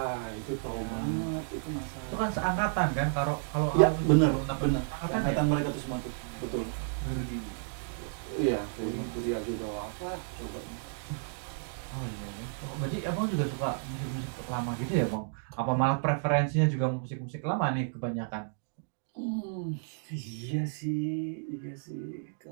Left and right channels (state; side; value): silent; left; digital silence